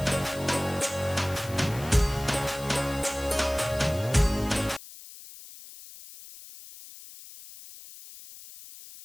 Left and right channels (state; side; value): noise; left; hiss, 17 dB below the sound